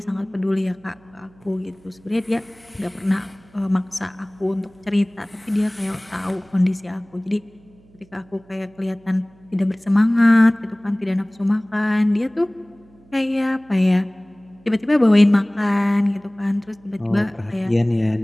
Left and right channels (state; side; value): noise; right; hum, 28 dB below the sound